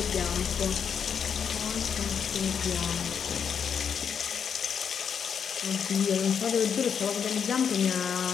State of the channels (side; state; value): right; quieter; 7.3 dB